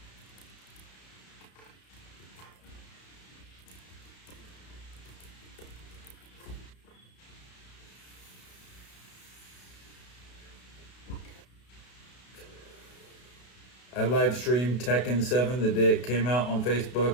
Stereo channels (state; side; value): late; right; 32 ms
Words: I live streamed Tekken 7 the day it came out on